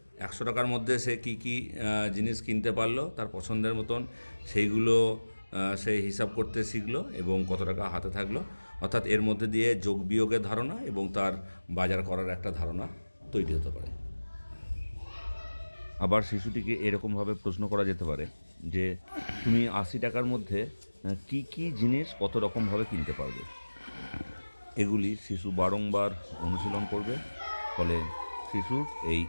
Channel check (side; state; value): both; inverted; correlation -1.00